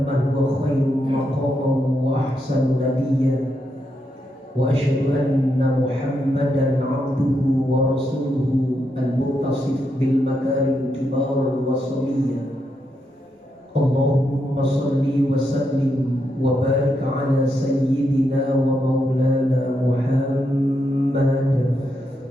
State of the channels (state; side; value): normal; both; correlation 0.81